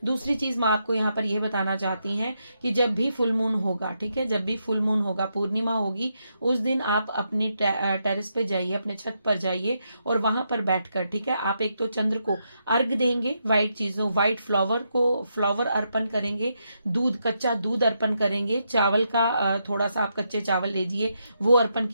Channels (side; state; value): both; inverted; correlation -0.81